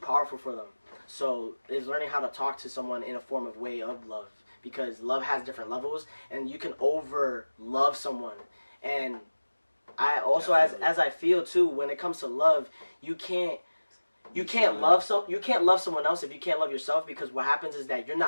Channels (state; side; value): inverted; both; correlation -1.00